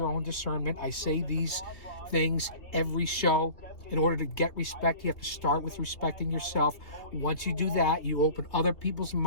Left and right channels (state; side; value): late; right; 3.1 ms